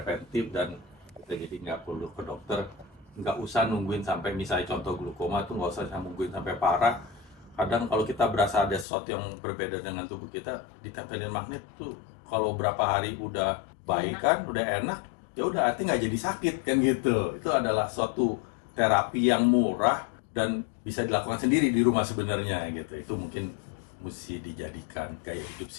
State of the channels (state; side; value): drops out; right; at 8.8 s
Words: dan kita jadi nggak perlu ke dokter. Nggak usah nungguin sampai misalnya contoh glukoma tuh nggak usah nungguin sampai parah. Kadang kalau kita berasa ada sesuatu yang berbeda dengan tubuh kita, ditempelin magnet tuh kalau berapa hari udah baik kan, udah enak, ya udah artinya nggak jadi sakit kan gitu. Itu adalah suatu terapi yang murah dan bisa dilakukan sendiri di rumah sebenarnya gitu. Itu mungkin mesti dijadikan gaya hidup